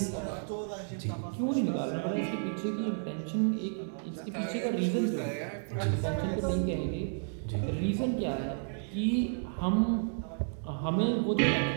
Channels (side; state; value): left; silent; digital silence